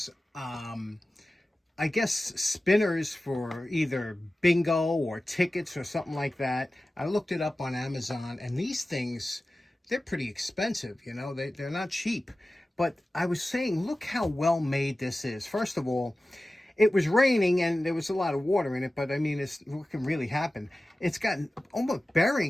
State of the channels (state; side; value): normal; both; correlation 0.95